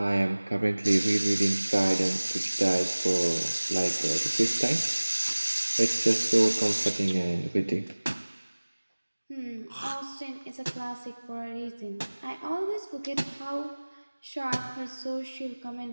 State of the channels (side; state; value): both; inverted; correlation -1.00